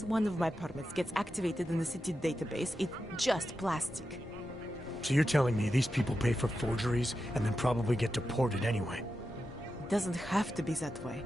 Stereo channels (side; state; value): both; normal; correlation 0.89